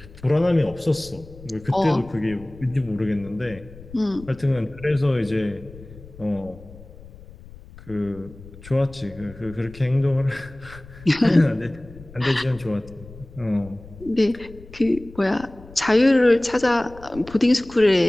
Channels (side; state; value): left; noise; rumble, 19 dB below the sound